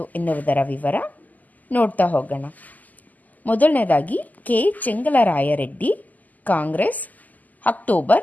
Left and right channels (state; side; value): late; right; 0.080 ms